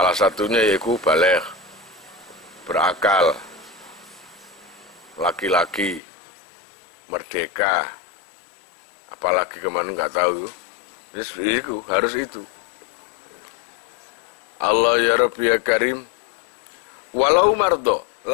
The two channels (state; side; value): drops out; right; at 6.0 s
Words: satunya yaitu baligh, berakal, laki-laki, merdeka, apalagi kemana nggak tahu. Itu harus itu. Allah ya Rabbi ya Karim. Walau mardo